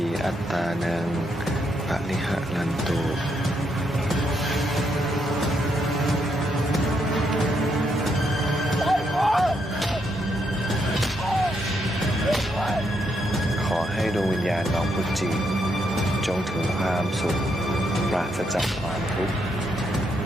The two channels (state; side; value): normal; both; correlation 0.77